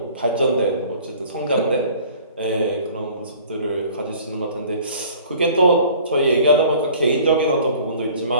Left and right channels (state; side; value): inverted; both; correlation -0.49